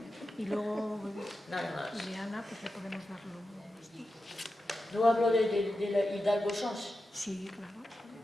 Y luego, nada más. Ileana, pues le podemos darlo. No hablo de la Hidalgo Sans. Sí, claro.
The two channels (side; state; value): both; normal; correlation 0.91